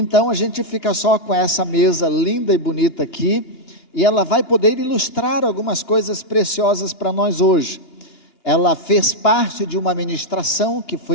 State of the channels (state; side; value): late; right; 2.9 ms